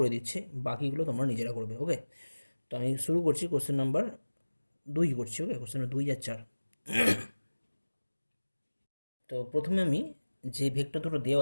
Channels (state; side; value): inverted; both; correlation -1.00